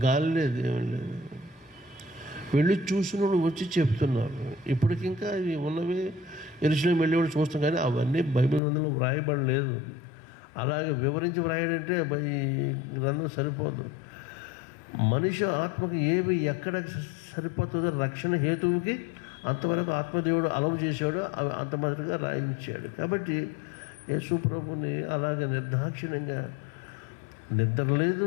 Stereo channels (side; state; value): right; drops out; at 8.6 s